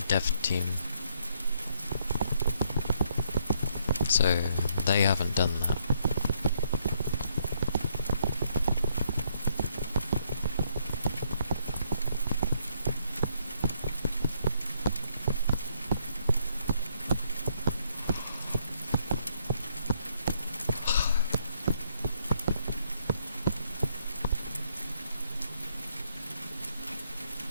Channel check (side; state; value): both; inverted; correlation -0.71